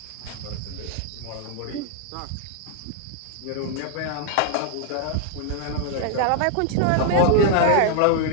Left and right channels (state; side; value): different; both; correlation 0.00